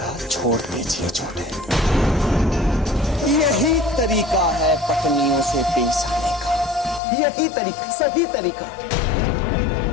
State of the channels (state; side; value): drops out; right; at 7.0 s